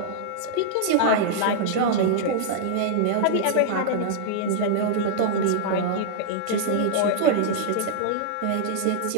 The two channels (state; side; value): different; both; correlation -0.01